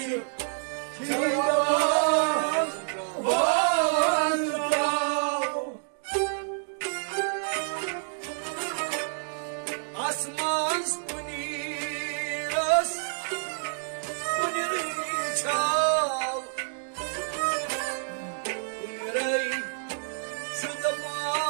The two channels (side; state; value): left; silent; digital silence